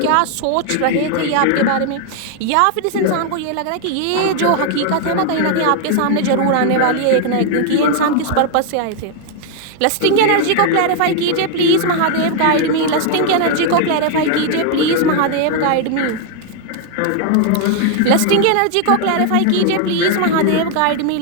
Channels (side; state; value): both; different; correlation 0.00